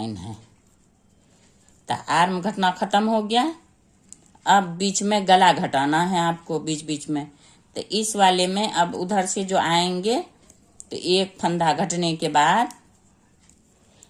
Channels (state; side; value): identical; both; correlation 1.00